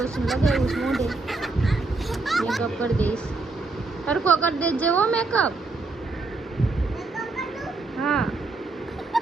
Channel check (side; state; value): left; quieter; 3.5 dB